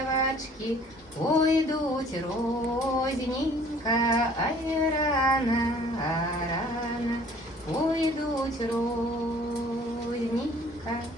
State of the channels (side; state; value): both; normal; correlation 0.54